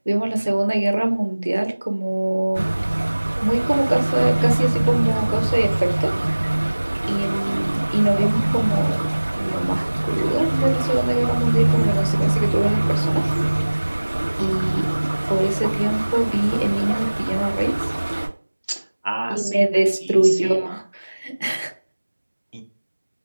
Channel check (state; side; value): inverted; both; correlation -1.00